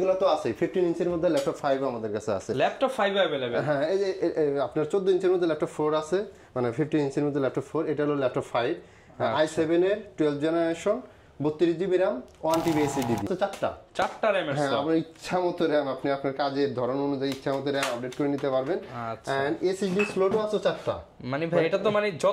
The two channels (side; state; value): both; identical; correlation 1.00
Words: তো আছে। 15 ইঞ্চির মধ্যে ল্যাপটপ 5 আমাদের কাছে আছে। Laptop 5 available. হ্যাঁ, এই যে আপনার 14 ইঞ্চির মধ্যে ল্যাপটপ 4 আছে, মানে 15 ইঞ্চির মধ্যে ল্যাপটপ 4। এটা হলো ল্যাপটপ 5 i7 এর 12th generation, 32GB RAM, 1TB SSD। তো চারটা RAM। হ্যাঁ, আপনার ইচ্ছা মতো RAM, আপনি আপনার কাজের ধরন অনুযায়ী ইচ্ছা মতো RAM আপডেট করে নিতে পারবেন। এন্ড SSD স্লটও আছে 4টা। মানে ভাই, এটা তো মানে